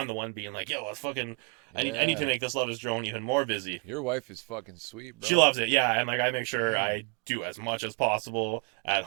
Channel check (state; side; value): quieter; left; 34.1 dB